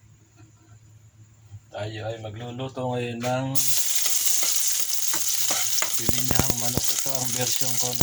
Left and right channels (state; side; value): identical; both; correlation 1.00